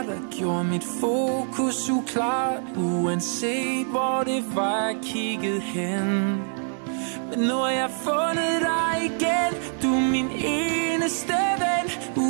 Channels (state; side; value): silent; left; 62 dB below the other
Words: der gjorde mit fokus uklart, uanset hvor det var, jeg kiggede hen. Men nu har jeg fundet dig igen, du er min eneste ven.